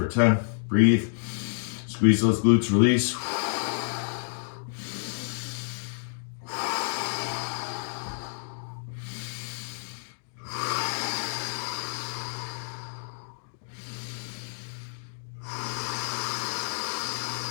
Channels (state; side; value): silent; right; digital silence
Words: 10. Breathe. Squeeze those glutes, release.